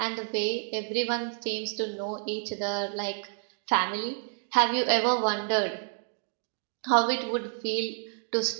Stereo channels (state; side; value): silent; left; 58 dB below the other